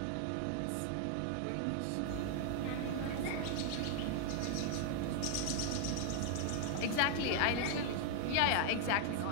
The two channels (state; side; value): different; both; correlation 0.00